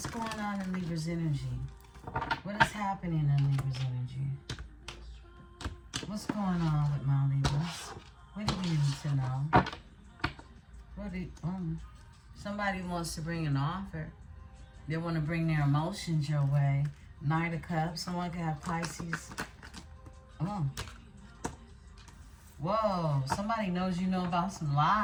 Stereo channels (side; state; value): both; identical; correlation 1.00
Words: going on in Libra's energy? What is happening in Libra's energy? What's going on with my Libras? What do you need to know? Somebody wants to bring an offer. They want to bring their emotions your way. Knight of Cups. Someone could have Pisces. Whoa. Somebody knows you know about some